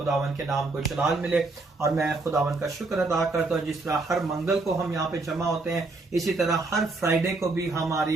के नाम को जलाल मिले। और मैं खुदावन का शुक्र अदा करता हूं, जिस तरह हर मंगल को हम यहाँ पे जमा होते हैं, इसी तरह हर फ्राइडे को भी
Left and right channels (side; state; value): left; quieter; 3.4 dB